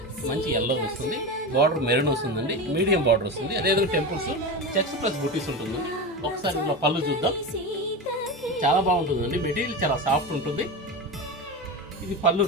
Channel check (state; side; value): normal; both; correlation 0.22